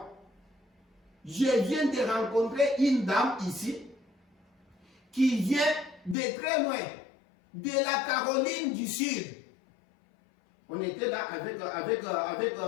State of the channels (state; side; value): drops out; right; at 6.2 s